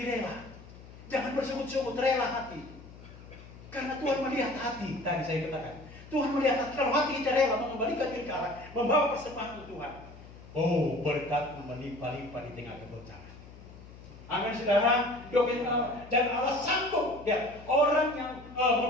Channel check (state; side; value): noise; left; hum, 18 dB below the sound